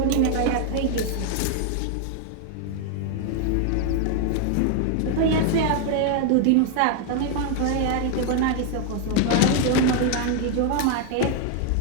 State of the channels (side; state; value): both; different; correlation 0.00